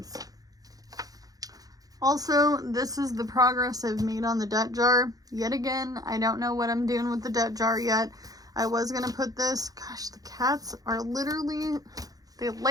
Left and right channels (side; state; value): left; late; 0.18 ms